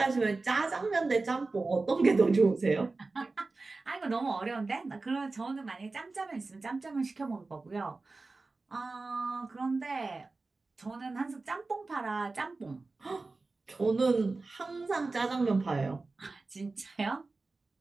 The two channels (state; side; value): quieter; left; 3.6 dB